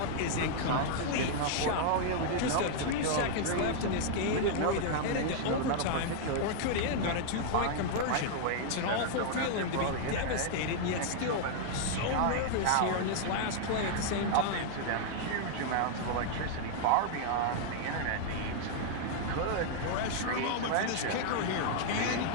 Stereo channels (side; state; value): both; different; correlation -0.01